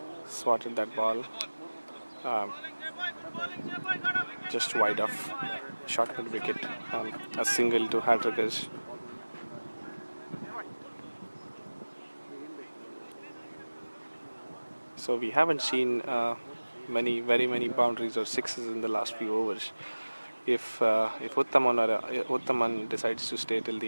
Just wide off. Short mid wicket. A single to Hattrickers. So we haven't seen very many boundaries or sixes in the last few overs. If Uttaman decides to stay till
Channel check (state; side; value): inverted; both; correlation -1.00